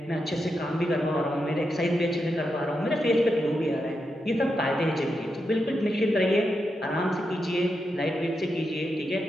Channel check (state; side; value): normal; both; correlation 0.86